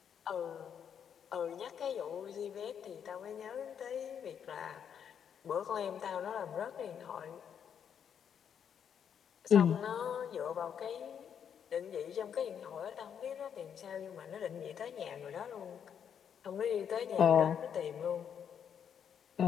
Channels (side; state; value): right; quieter; 8.1 dB